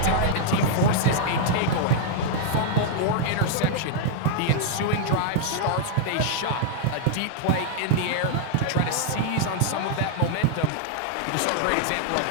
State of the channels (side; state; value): both; different; correlation -0.01